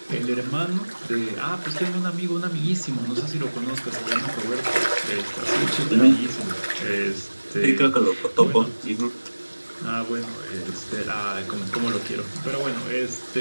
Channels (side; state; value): both; inverted; correlation -1.00